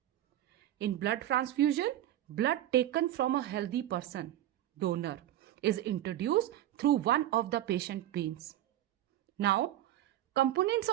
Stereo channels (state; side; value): quieter; left; 13.0 dB